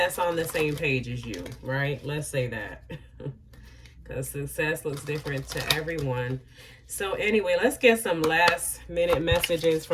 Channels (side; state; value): both; identical; correlation 1.00